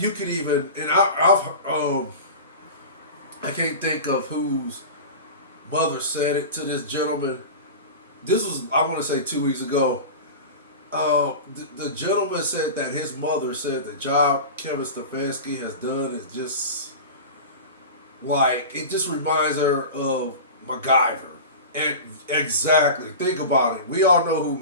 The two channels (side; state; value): both; inverted; correlation -0.30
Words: could even, and I can't think of whose mother said it to this gentleman. This was, I want to say, 2 weeks ago. The gentleman said that his mother said the job Kevin Stefanski has done is just like, it just reminds her of MacGyver. And exactly, think about it. We all know who